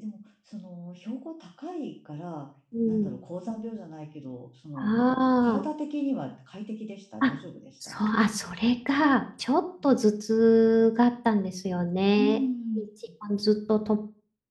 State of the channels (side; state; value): both; identical; correlation 1.00